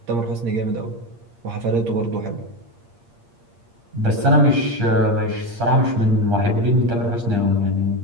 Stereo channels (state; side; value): late; left; 8.6 ms